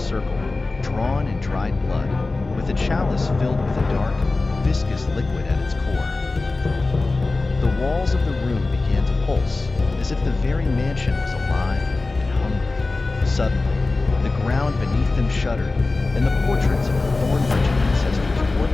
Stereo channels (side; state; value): right; quieter; 3.4 dB